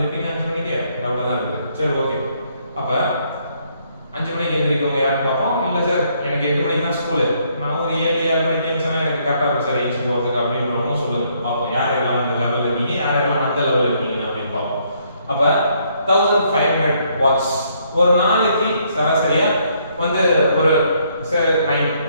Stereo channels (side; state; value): both; inverted; correlation -0.70